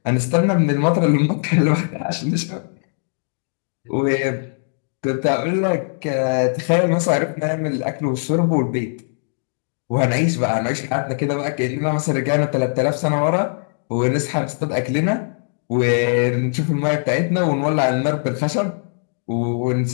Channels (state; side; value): silent; right; digital silence